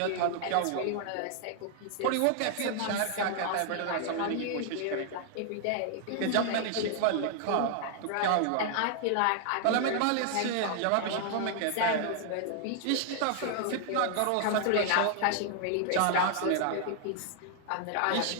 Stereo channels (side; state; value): both; different; correlation 0.00